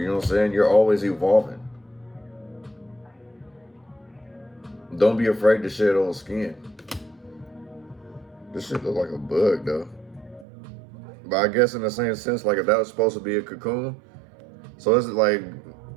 know what I'm saying? You're always evolving. Don't be afraid to shed old skin. This shit look like a bug, though. But I guess in the same sense, like if that was supposed to be a cocoon, so it's like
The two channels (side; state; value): left; drops out; at 10.5 s